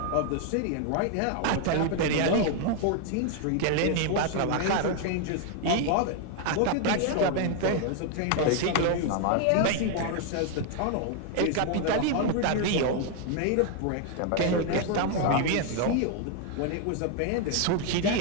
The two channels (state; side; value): different; both; correlation 0.00